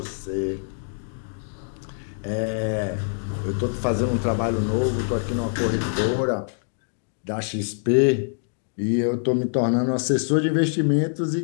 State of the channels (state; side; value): silent; right; digital silence